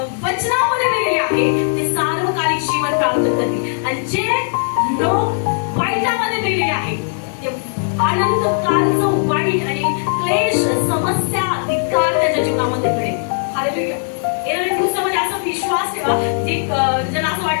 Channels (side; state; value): right; silent; digital silence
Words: वचनामध्ये मेलेले आहे ते सार्वकालिक जीवन प्राप्त करतील. आणि जे लोक वाईटामध्ये मेलेले आहे ते अनंत कालचं वाईट आणि क्लेश, समस्या, धिक्कार त्याच्या जीवनामध्ये घडेल. हालेलुया. येणाऱ्या दिवसामध्ये असा विश्वास ठेवा जे ज्यांना असं